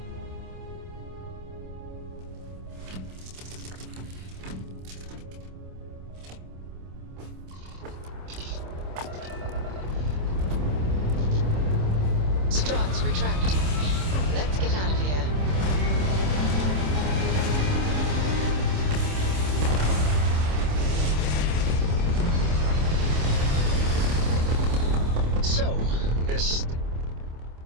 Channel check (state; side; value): late; left; 26 ms